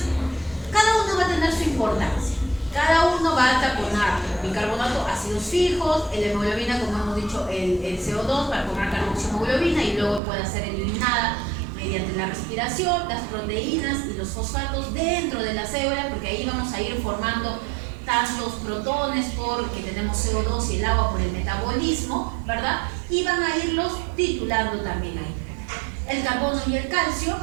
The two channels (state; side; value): drops out; left; at 10.2 s